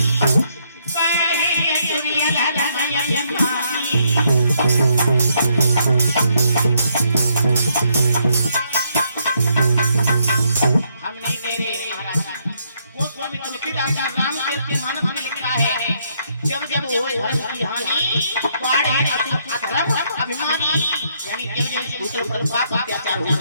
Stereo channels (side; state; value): both; inverted; correlation -0.73